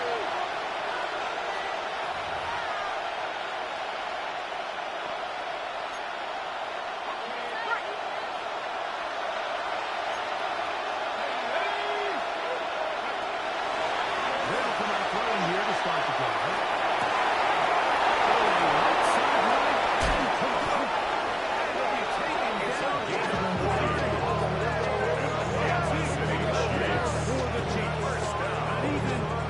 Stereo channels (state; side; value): identical; both; correlation 1.00